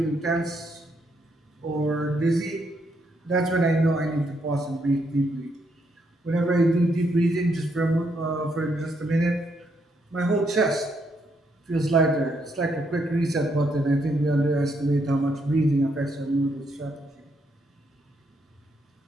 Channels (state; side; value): normal; both; correlation 0.76